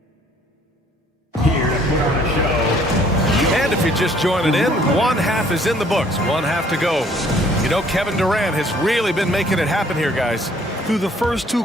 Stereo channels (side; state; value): both; normal; correlation 0.60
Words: Here to put on a show. And if you're just joining in, one half is in the books, one half to go. You know, Kevin Durant has really been making it happen here, guys. Through the first 2